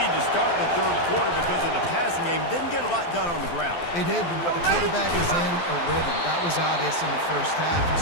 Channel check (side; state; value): right; late; 12 ms